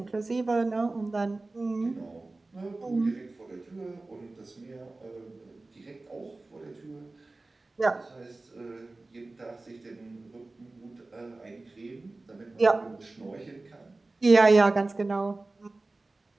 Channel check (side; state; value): left; quieter; 3.2 dB